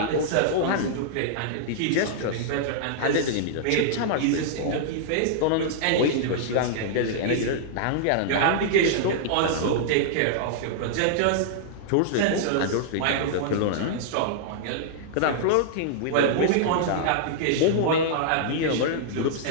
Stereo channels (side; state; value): both; different; correlation -0.02